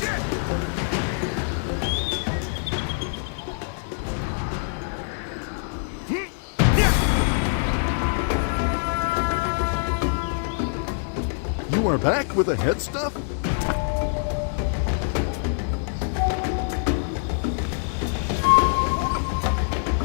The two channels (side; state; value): right; silent; digital silence